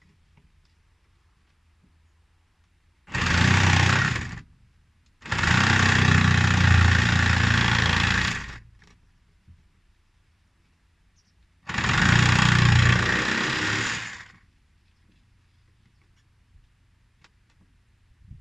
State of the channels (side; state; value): both; identical; correlation 1.00